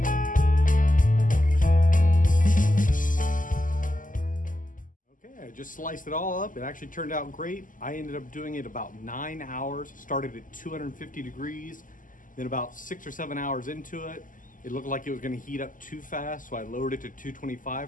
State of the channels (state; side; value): late; right; 0.38 ms